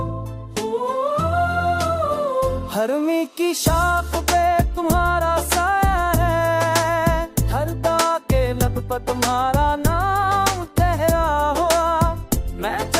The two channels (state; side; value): identical; both; correlation 1.00